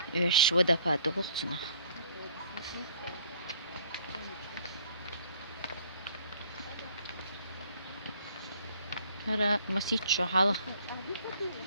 Öş vodopadı buğsuna. Hara masit şu hala.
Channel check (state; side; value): inverted; both; correlation -0.59